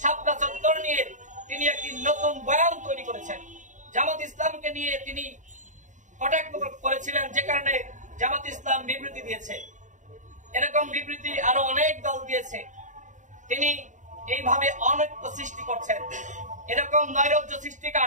শাপলা চত্বর নিয়ে তিনি একটি নতুন বয়ান তৈরি করেছেন। জামাত ইসলামকে নিয়ে তিনি কটাক্ষ করেছিলেন, যে কারণে জামাত ইসলাম বিবৃতি দিয়েছে। এরকম বিবৃতি আরো অনেক দল দিয়েছে। তিনি এইভাবে অনৈক্য সৃষ্টি করছেন। এরকম নৈরাজ্য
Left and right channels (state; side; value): late; left; 0.36 ms